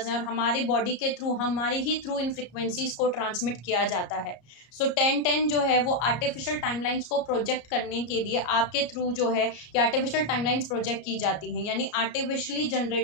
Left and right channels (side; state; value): right; late; 34 ms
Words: हैं, और हमारी बॉडी के थ्रू, हमारी ही थ्रू इन फ्रीक्वेंसीज को ट्रांसमिट किया जाता है। सो 10-10 जो है वो आर्टिफिशियल टाइमलाइंस को प्रोजेक्ट करने के लिए आपके थ्रू जो है ये आर्टिफिशियल टाइमलाइंस प्रोजेक्ट की जाती हैं, यानी आर्टिफिशियली